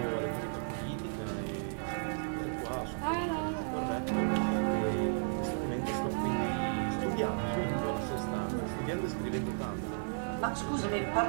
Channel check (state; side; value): silent; left; digital silence